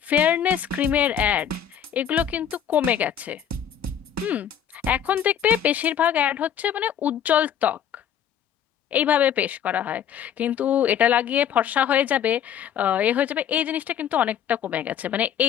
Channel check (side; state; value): right; quieter; 9.2 dB